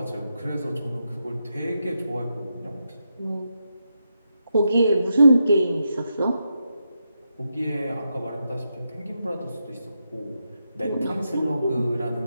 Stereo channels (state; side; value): inverted; both; correlation -0.84